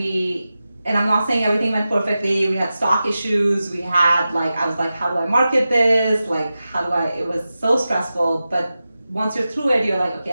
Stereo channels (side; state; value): both; inverted; correlation -0.93